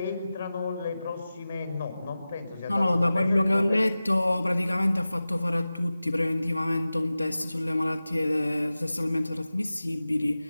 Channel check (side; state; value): both; inverted; correlation -0.96